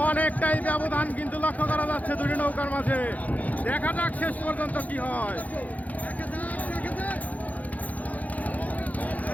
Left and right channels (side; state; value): right; late; 0.076 ms